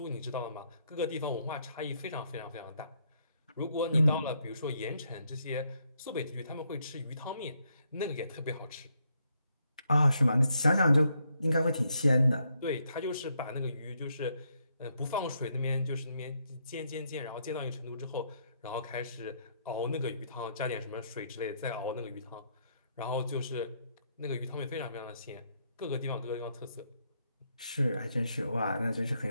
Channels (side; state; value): both; inverted; correlation -0.75